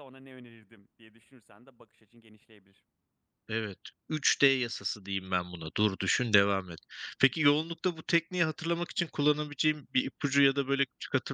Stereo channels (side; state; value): both; identical; correlation 1.00